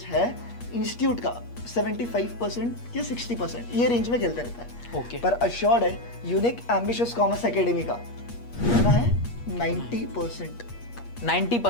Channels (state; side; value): late; right; 8.4 ms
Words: है इंस्टीट्यूट का 75% या 60%, ये रेंज में खेलते रहता है। ओके। पर अश्योर्ड है यूनिक एम्बिशियस कॉमर्स एकेडमी का कितना है? 90%।